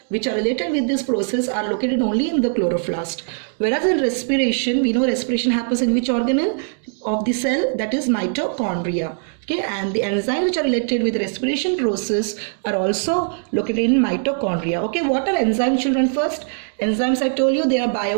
which are related with this process are located only in the chloroplast. Whereas in respiration, we know respiration happens in which organelle of the cell? That is mitochondria. Okay, and the enzymes which are related with the respiration process are also located in mitochondria. Okay, what are enzymes, children? First, enzymes, I told you, they are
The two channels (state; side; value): silent; left; digital silence